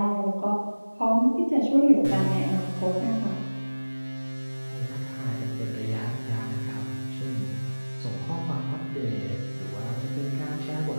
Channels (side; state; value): both; inverted; correlation -1.00